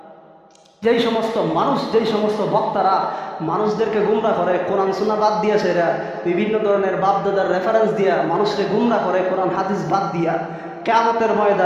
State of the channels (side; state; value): both; identical; correlation 1.00